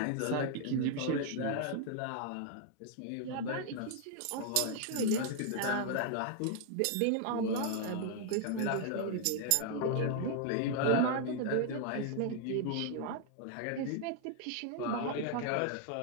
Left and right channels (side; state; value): both; different; correlation 0.00